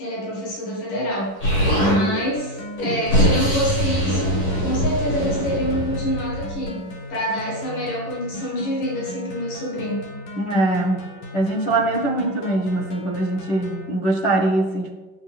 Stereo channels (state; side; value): late; right; 11 ms